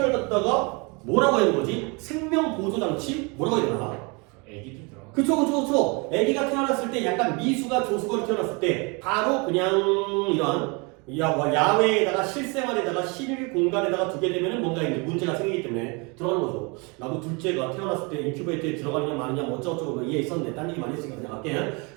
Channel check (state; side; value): quieter; left; 30.4 dB